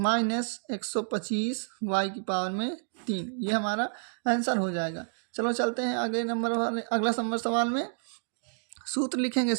125 y की पावर में 3, ये हमारा आंसर हो जाएगा। चलो चलते हैं अगले नंबर वाले, अगला नंबर सवाल में सूत्र लिखेंगे।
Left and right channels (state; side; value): silent; left; digital silence